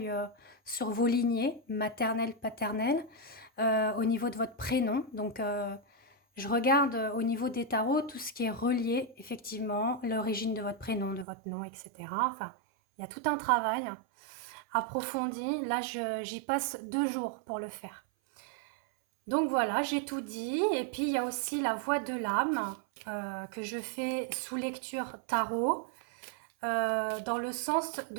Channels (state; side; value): drops out; left; at 11.2 s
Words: sur vos lignées, maternelles, paternelles, au niveau de votre prénom. Donc, je regarde au niveau des tarots tout ce qui est relié, effectivement, l'origine de votre prénom, de votre nom, etc. Enfin, il y a tout un travail approfondi. Là, j'y passe 2 jours pour le faire. Donc voilà, j'ai tout dit. Et puis, il y a aussi la voix de l'âme que je fais sous lecture tarot, dans le sens